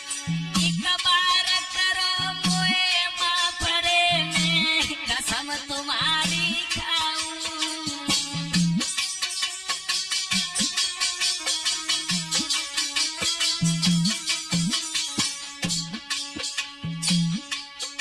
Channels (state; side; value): identical; both; correlation 1.00